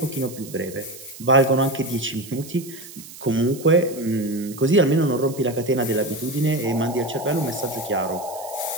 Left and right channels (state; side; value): noise; right; hiss, 16 dB below the sound